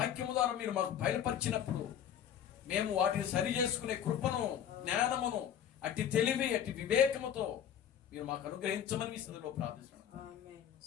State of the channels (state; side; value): quieter; right; 9.4 dB